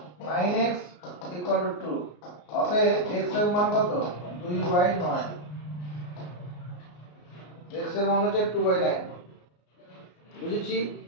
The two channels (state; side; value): late; right; 34 ms